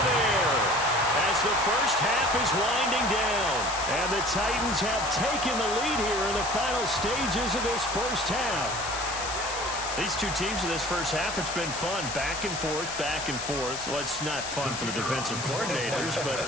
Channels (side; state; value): left; noise; hiss, 7 dB below the sound